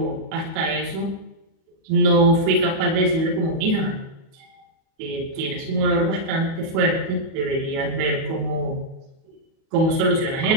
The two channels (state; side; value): late; left; 37 ms